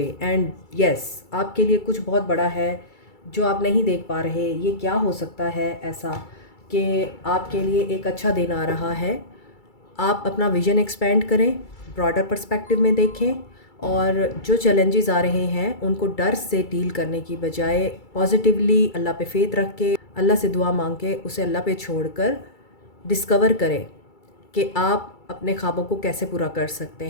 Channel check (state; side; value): late; right; 2.3 ms